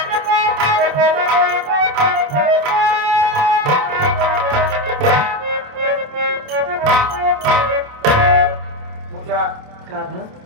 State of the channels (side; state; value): left; late; 27 ms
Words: पूजा, कहाँ था?